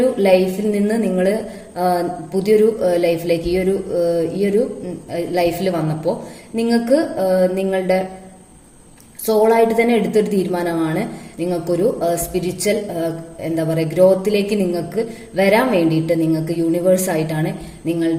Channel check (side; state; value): both; identical; correlation 1.00